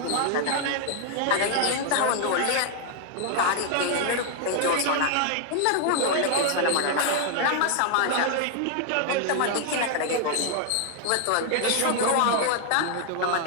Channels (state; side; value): different; both; correlation 0.00